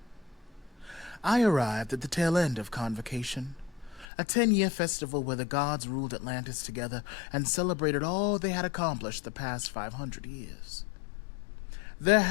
I arrived at the tail end of Convocation, a 10-year festival where the gods ruled Atlantis together and celebrated all they had accomplished the past 500 years. There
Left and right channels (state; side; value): drops out; right; at 4.0 s